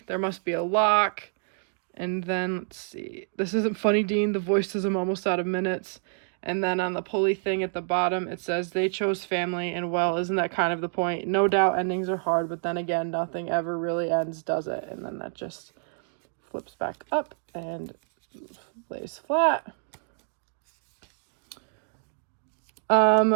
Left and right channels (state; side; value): silent; left; digital silence